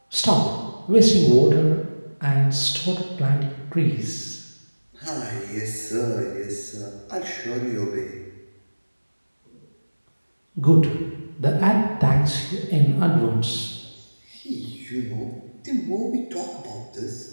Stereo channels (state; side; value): inverted; both; correlation -1.00